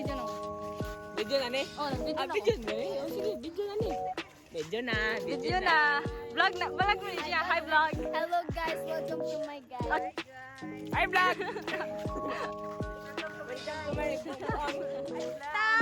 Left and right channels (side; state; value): both; identical; correlation 1.00